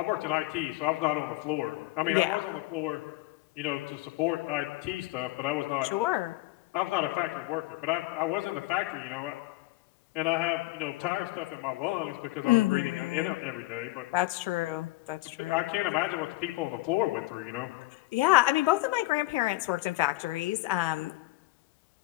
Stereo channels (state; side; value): quieter; right; 19.8 dB